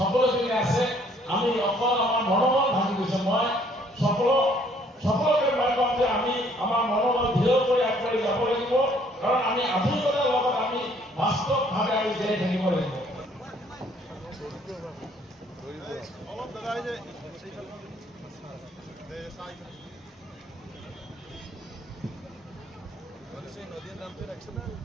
আছে আমি অকল আমাৰ মনোবল ভাঙি গৈছে মই সকলোকে মই কম যে আমি আমাৰ মনোবল দৃঢ় কৰি আগবাঢ়ি যাব লাগিব কাৰণ আমি আধুনিকতাৰ লগত আমি বাস্তৱভাৱে আমি জীয়াই থাকিব লাগিব নদীৰ নামটো ৰাখিছে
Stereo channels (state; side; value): normal; both; correlation 0.62